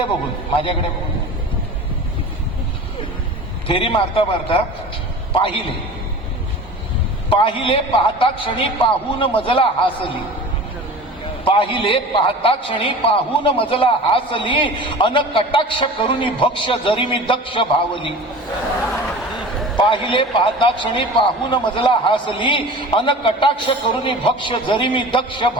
बघून, माझ्याकडे बघून. फेरी मारता मारता पाहिले पाहिले पाहता क्षणी पाहून मजला हासली, पाहिले पाहता क्षणी पाहून मजला हासली, अन कटाक्ष करुनी भक्ष जरी मी दक्ष भावली. पाहिले पाहता क्षणी पाहून मजला हासली, अन कटाक्ष करुनी भक्ष जरी मी दक्ष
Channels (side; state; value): both; normal; correlation 0.37